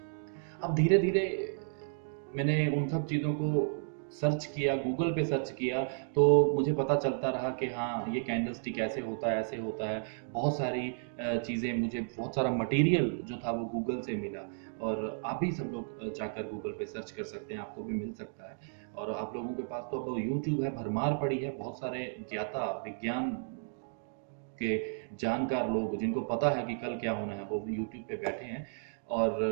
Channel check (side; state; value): left; silent; digital silence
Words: अब धीरे धीरे मैंने उन सब चीजों को सर्च किया, गूगल पे सर्च किया, तो मुझे पता चलता रहा कि हाँ, ये कैंडल स्टिक ऐसे होता है, ऐसे होता है। बहुत सारी चीज़ें, मुझे बहुत सारा मटेरियल जो था वो गूगल से मिला। और आप भी सब लोग जाकर गूगल पे सर्च कर सकते हैं, आपको भी मिल सकता है। और आप लोगों के पास तो अब यूट्यूब है, भरमार पड़ी है, बहुत सारे ज्ञाता, विज्ञान के जानकार लोग जिनको पता है कि कल क्या होना है, वो यूट्यूब पे बैठे हैं। और